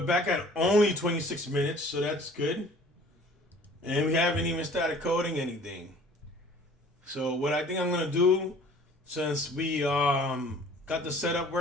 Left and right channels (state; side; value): normal; both; correlation 0.50